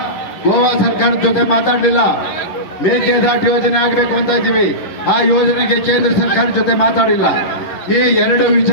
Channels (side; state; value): right; late; 11 ms